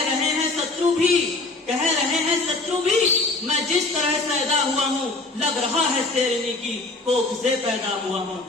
हैं शत्रु भी, कह रहे हैं शत्रु भी, मैं जिस तरह से पैदा हुआ हूँ, लग रहा है शेरनी की कोख से पैदा हुआ हूँ,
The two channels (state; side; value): quieter; right; 3.2 dB